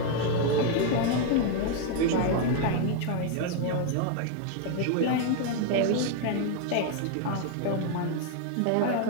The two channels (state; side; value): different; both; correlation 0.00